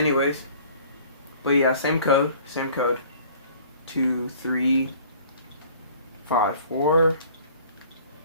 but yeah, same code. 2354.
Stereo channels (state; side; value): inverted; both; correlation -0.51